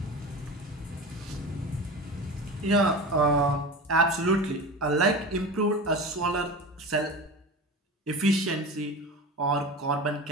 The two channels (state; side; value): normal; both; correlation 0.30